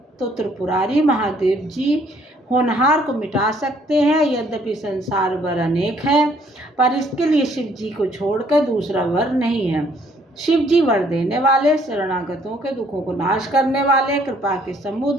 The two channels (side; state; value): both; normal; correlation 0.64